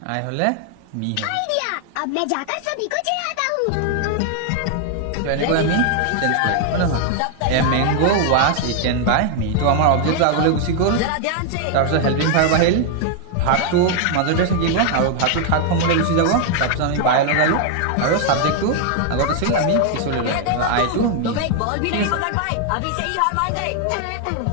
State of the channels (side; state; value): both; different; correlation 0.00